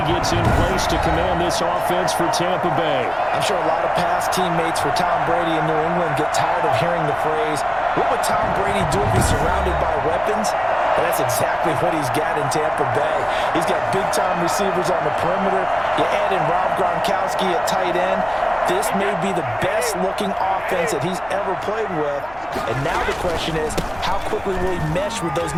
gets in place to command this offense for Tampa Bay. I'm sure a lot of past teammates for Tom Brady in New England get tired of hearing the phrase, what would Tom Brady do if he's surrounded by weapons? And that's exactly what he's got in Tampa Bay. He's got big-time receivers on the perimeter. You add in Rob Gronkowski at tight end. This may be the best-looking offense that he's ever played with. And now the question is, how quickly will he mesh with those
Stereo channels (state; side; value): noise; left; hum, 22 dB below the sound